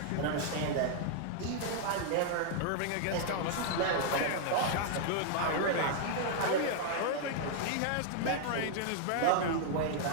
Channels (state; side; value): different; both; correlation -0.01